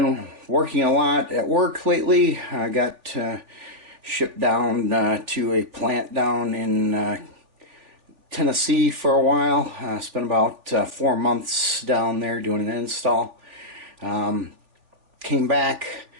working a lot at work lately. I got shipped down to a plant down in Tennessee for a while. Spent about 4 months down there doing an install. Came back,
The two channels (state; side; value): late; left; 3.5 ms